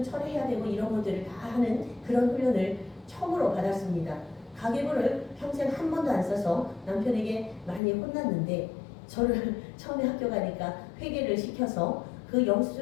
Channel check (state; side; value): drops out; right; at 7.8 s